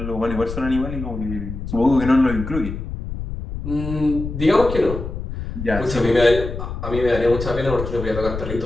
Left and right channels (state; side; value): noise; left; rumble, 7 dB below the sound